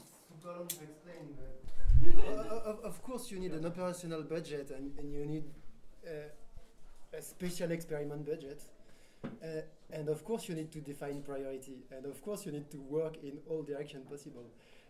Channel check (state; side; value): identical; both; correlation 1.00